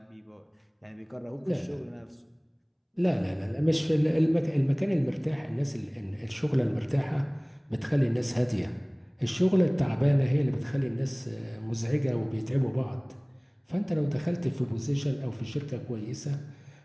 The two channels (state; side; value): identical; both; correlation 1.00